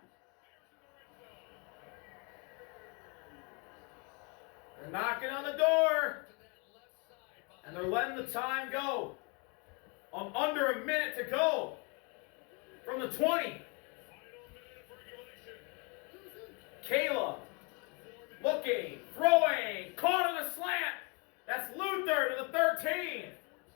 They're knocking on the door. To that left side. And they're letting the time go. Under a minute to go. From the 20. Caleb. Looking. Throwing. Caught on a slant. That's Luther to the 13.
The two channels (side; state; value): right; quieter; 33.2 dB